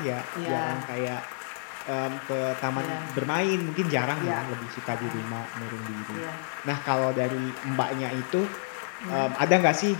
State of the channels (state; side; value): silent; right; 59 dB below the other